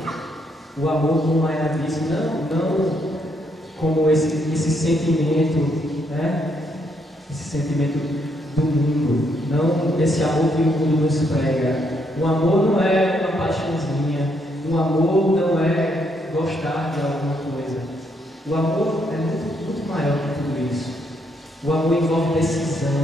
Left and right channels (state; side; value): normal; both; correlation 0.74